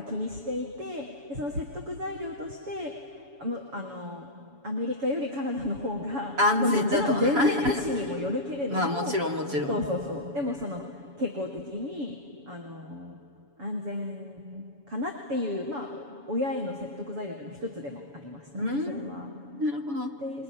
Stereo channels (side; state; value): left; late; 7.1 ms